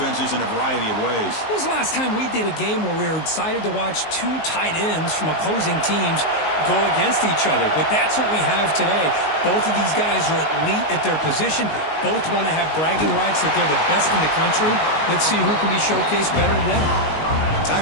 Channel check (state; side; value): late; right; 19 ms